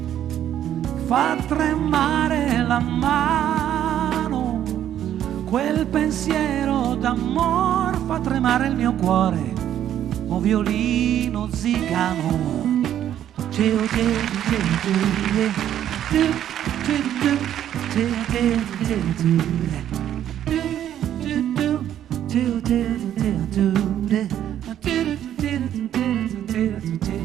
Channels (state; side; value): quieter; left; 10.9 dB